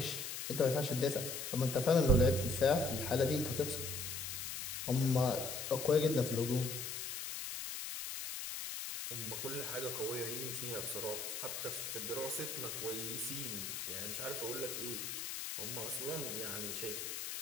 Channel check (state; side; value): noise; left; hiss, 5 dB below the sound